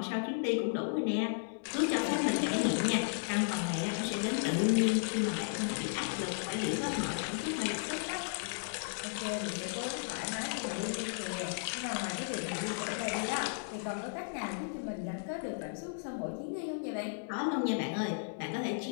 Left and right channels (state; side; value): silent; right; digital silence